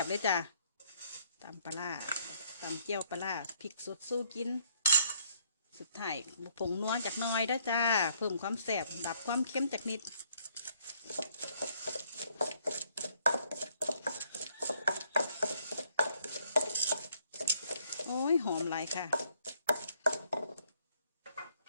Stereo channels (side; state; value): both; inverted; correlation -0.66